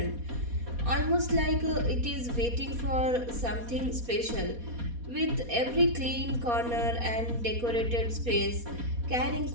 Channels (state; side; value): late; left; 4.2 ms